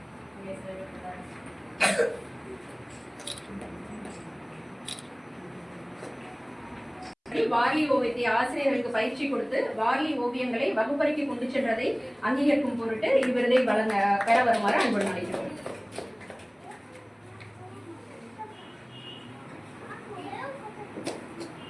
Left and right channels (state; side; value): identical; both; correlation 1.00